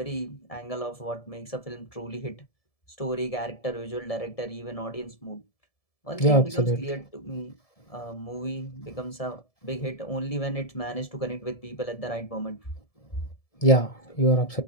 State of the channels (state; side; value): late; right; 1.7 ms